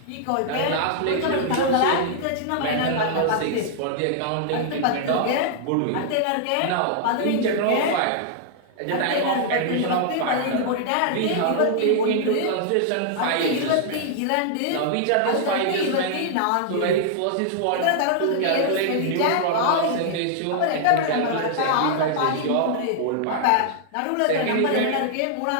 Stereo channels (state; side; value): different; both; correlation -0.01